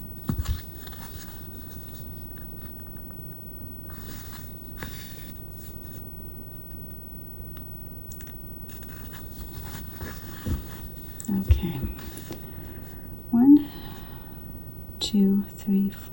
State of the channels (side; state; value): right; noise; rumble, 7 dB below the sound